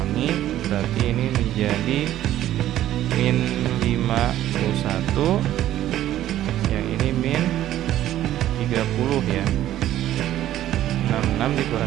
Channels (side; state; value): left; quieter; 12.9 dB